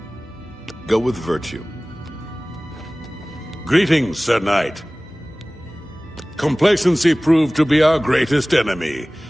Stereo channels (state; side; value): normal; both; correlation 0.98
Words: Go with virtue. Greetings, Sir Knight. Complacency proved to be our greatest enemy.